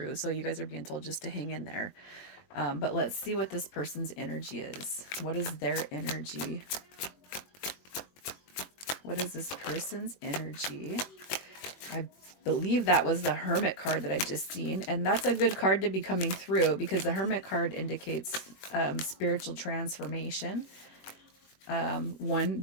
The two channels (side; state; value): right; late; 21 ms